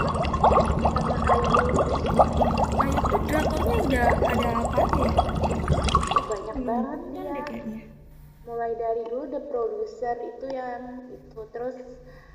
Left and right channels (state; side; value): identical; both; correlation 1.00